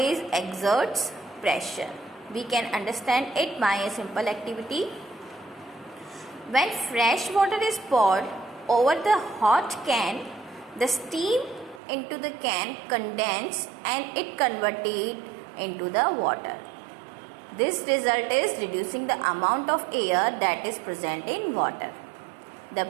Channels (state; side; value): drops out; left; at 11.8 s